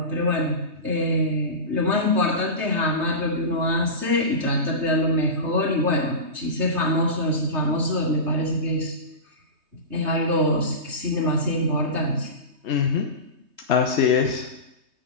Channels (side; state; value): left; late; 3.2 ms